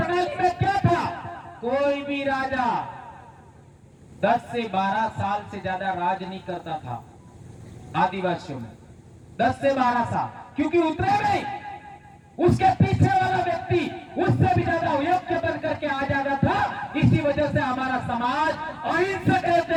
में क्या था? कोई भी राजा 10 से 12 साल से ज्यादा राज नहीं करता था आदिवासियों में, 10 से 12 साल, क्योंकि उतरे नहीं, उसके पीछे वाला व्यक्ति उससे भी ज्यादा योग्य बन करके आ जाता था। इसी वजह से हमारा समाज अहिंसक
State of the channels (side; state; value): both; identical; correlation 1.00